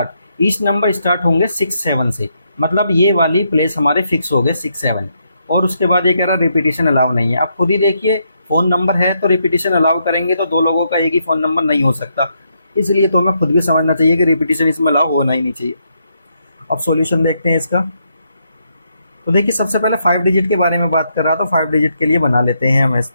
स्टार्ट होंगे 6 7 से, मतलब ये वाली प्लेस हमारे फिक्स हो गए 6 7। और उसके बाद ये कह रहा है रिपीटिशन अलाउ नहीं है। अब खुद ही देखिए फ़ोन नंबर है तो रिपीटिशन अलाउ करेंगे तो 2 लोगों का एक ही फ़ोन नंबर नहीं हो सकता, इसलिए तो हमें खुद भी समझना चाहिए कि रिपीटिशन इसमें अलाउ होना ही नहीं चाहिए। अब सॉल्यूशन देखते हैं इसका। तो देखिए सबसे पहले 5 डिजिट के बारे में बात कर रहा, तो 5 डिजिट के लिए बना लेते हैं हम इस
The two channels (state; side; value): inverted; both; correlation -0.78